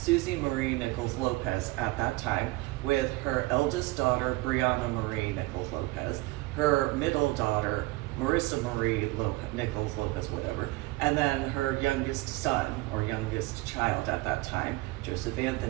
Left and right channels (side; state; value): left; quieter; 21.5 dB